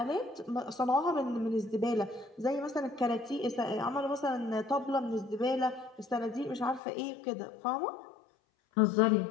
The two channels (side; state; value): right; drops out; at 6.8 s